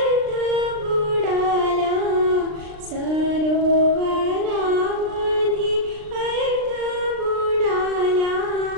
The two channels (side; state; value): left; late; 39 ms